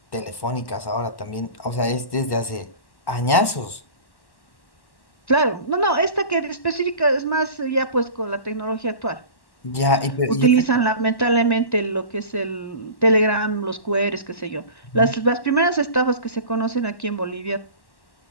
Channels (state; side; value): late; right; 1.1 ms